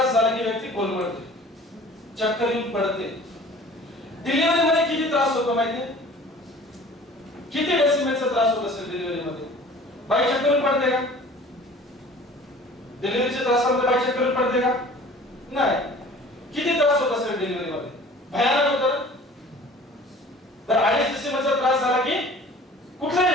झाला की व्यक्ती कोलमडते, चक्कर येऊन पडते. डिलिव्हरी मध्ये किती त्रास होतो माहितीये? किती डेसिमलचा त्रास होत असेल डिलिव्हरी मध्ये? बाई चक्कर येऊन पडते का? डिलिव्हरीच्या त्रासामध्ये बाई चक्कर येऊन पडते का? नाही. किती त्रास होत असेल डिलिव्हरी मध्ये? भयानक होतं. तर 2.5 डेसिमलचा त्रास झाला की कुठलाही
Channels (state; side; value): normal; both; correlation 0.46